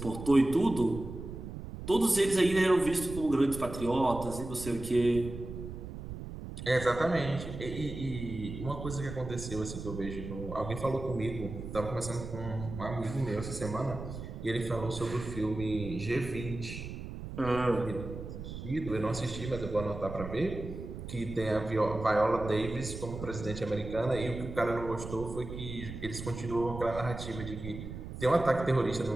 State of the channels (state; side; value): noise; right; rumble, 9 dB below the sound